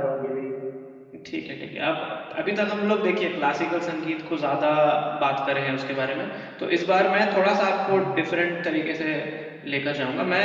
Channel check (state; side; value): identical; both; correlation 1.00